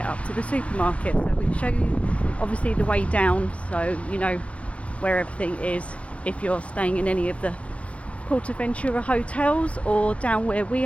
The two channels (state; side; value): late; right; 0.063 ms